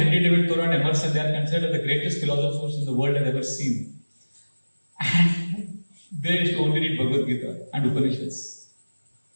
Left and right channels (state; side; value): inverted; both; correlation -1.00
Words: David Thoreau and Emerson, they are considered the greatest philosophers in the world has ever seen. And they used to only read Bhagavad Gita and Upanishads.